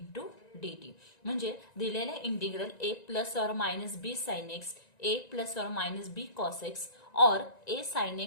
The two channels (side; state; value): right; late; 1.9 ms